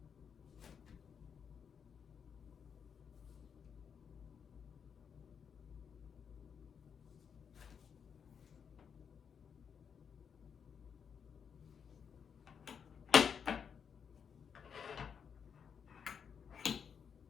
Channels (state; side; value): quieter; right; 7.0 dB